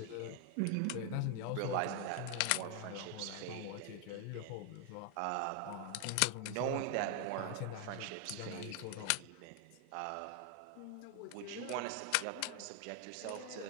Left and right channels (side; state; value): both; different; correlation 0.00